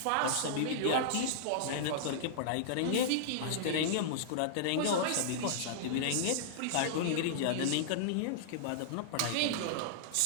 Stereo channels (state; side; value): different; both; correlation -0.02